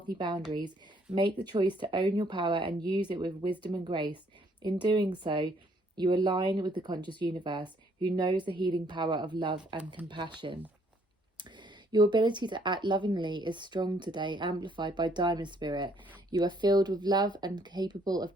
boundaries, make the choice to own your power and use it with wisdom and grace. In doing so, you align with the conscious universe, who knows the healing power of love and compassion. Your ability to act lovingly is strong today, amplified by Diamond Spirit. You are filled with love and capable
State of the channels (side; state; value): both; normal; correlation 0.66